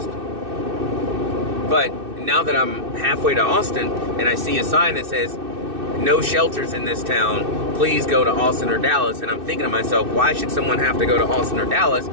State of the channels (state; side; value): late; left; 2.6 ms